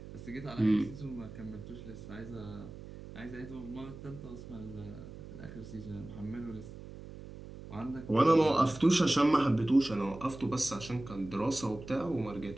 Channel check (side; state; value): right; noise; hum, 14 dB below the sound